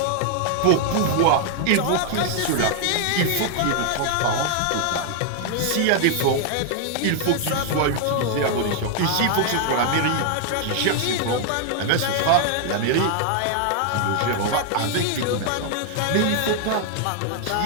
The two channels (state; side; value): different; both; correlation 0.00